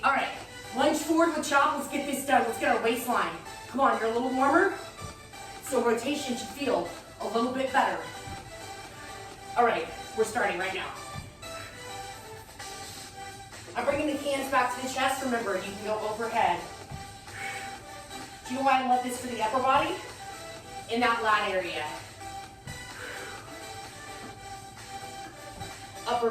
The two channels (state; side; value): identical; both; correlation 1.00